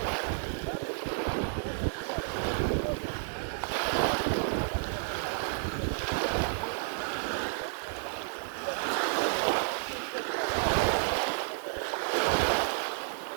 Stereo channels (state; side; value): silent; left; digital silence